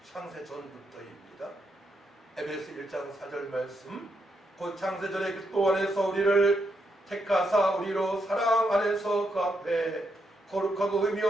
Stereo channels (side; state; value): both; normal; correlation 0.80